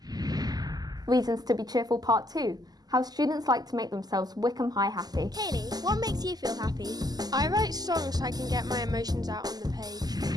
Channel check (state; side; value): late; left; 0.19 ms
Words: Reasons to be cheerful, Part 2. How students like to make themselves Wickham High happy. Kaylee, what makes you feel happy? I write songs so I can get my emotions out on the page.